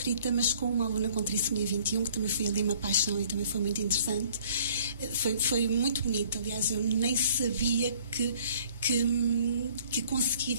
mas com uma aluna com trissomia 21, que também foi ali uma paixão e também foi muito interessante. Foi muito bonito, aliás, eu nem sabia que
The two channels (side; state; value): both; inverted; correlation -0.57